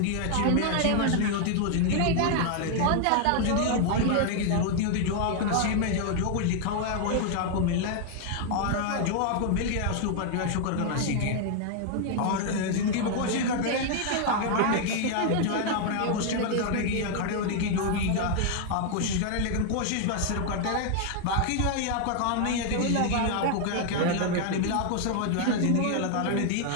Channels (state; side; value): different; both; correlation 0.00